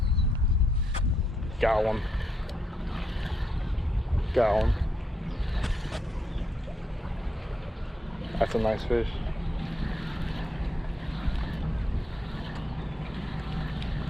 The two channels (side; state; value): both; normal; correlation 0.79